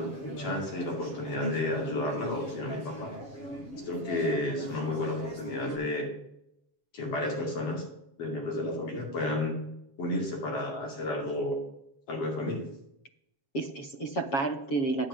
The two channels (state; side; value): late; right; 7.4 ms